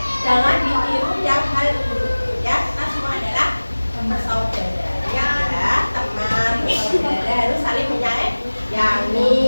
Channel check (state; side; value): inverted; both; correlation -1.00